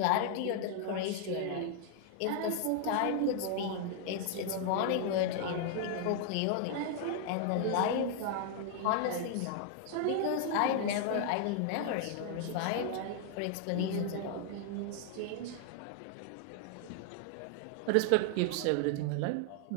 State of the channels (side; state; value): both; different; correlation 0.00